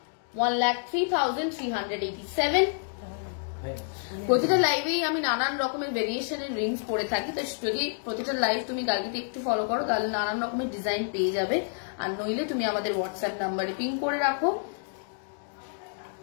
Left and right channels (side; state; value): right; silent; digital silence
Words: 1,03,387। প্রতিটা লাইভেই আমি নানান রকমের ভেরিয়েশনের রিংস পরে থাকি, তো যদি প্রতিটা লাইভ তুমি গার্গীতে একটু ফলো করো তাহলে নানান রকমের ডিজাইন পেয়ে যাবে। আর নইলে তুমি আমাদের হোয়াটসঅ্যাপ নাম্বারে পিং করে রাখো,